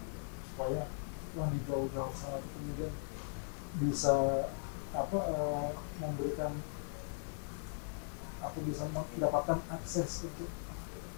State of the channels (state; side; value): silent; right; digital silence